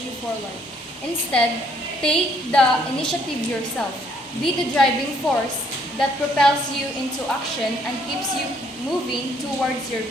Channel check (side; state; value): both; normal; correlation 0.66